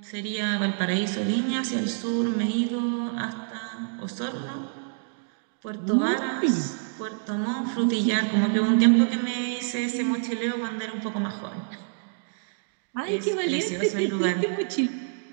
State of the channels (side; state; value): left; silent; digital silence